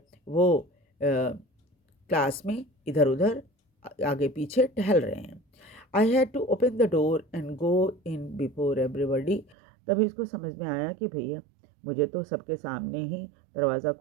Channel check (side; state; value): left; drops out; at 9.6 s